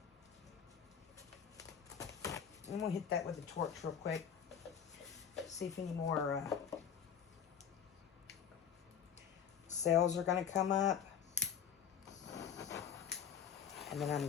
I'm going to hit that with a torch real quick. See if any more cells are going to come up. And then I'm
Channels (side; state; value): right; quieter; 8.0 dB